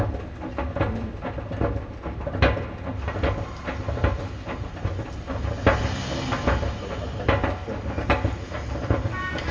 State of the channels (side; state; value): both; identical; correlation 1.00